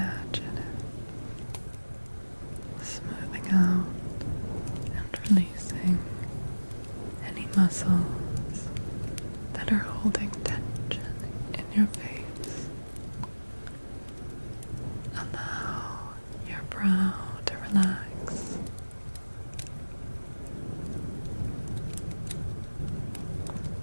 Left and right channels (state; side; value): inverted; both; correlation -1.00